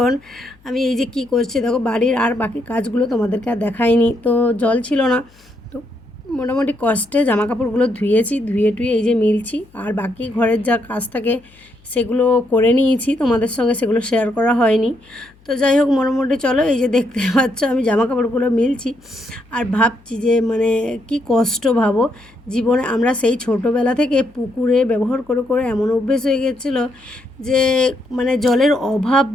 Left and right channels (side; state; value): left; noise; hum, 29 dB below the sound